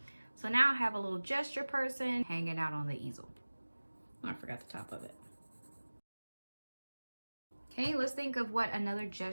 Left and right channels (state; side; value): inverted; both; correlation -1.00